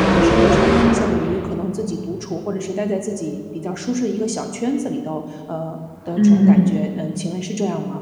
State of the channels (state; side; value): identical; both; correlation 1.00